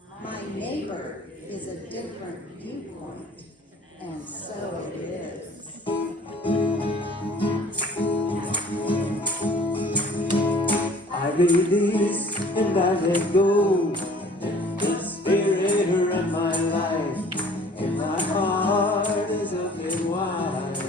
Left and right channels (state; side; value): normal; both; correlation 0.52